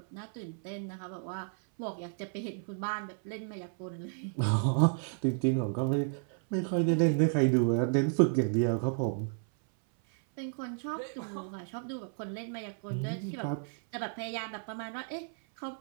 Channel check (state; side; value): silent; left; 56 dB below the other